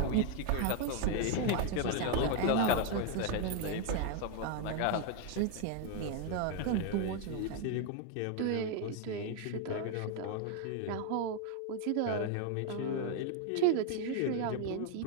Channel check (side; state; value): both; different; correlation 0.01